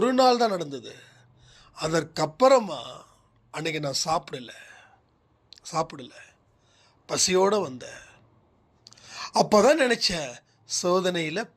நாள் தான் நடந்தது. அதற்கப்புறமா அன்னைக்கு நான் சாப்பிடல, பசியோடு வந்தேன். அப்போ தான் நினச்சேன், சோதனையில்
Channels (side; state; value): both; identical; correlation 1.00